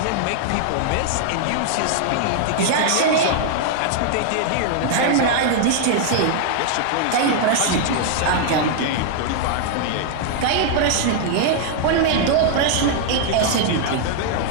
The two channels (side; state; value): both; different; correlation -0.01